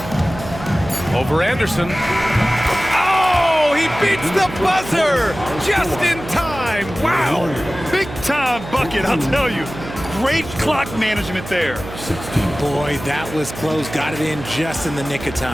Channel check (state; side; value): noise; right; hum, 12 dB below the sound